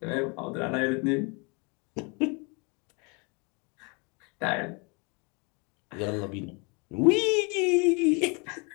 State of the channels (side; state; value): right; quieter; 31.7 dB